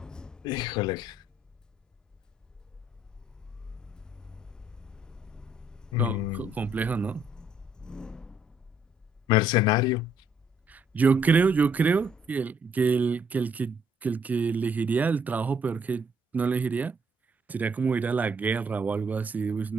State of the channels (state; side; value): normal; both; correlation 0.67